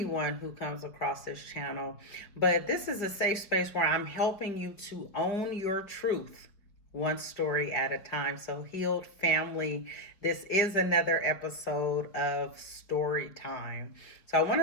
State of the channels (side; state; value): right; late; 5.0 ms